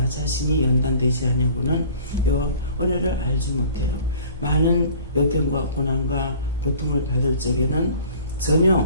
자신이 연단되지 않냐고는 은혜를 알지 못해요. 많은 역경과 고난과 고통을 받을 적에는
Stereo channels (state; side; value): inverted; both; correlation -0.48